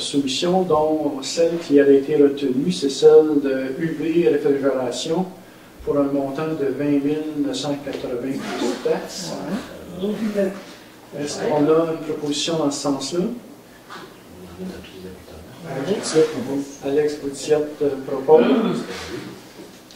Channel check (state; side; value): identical; both; correlation 1.00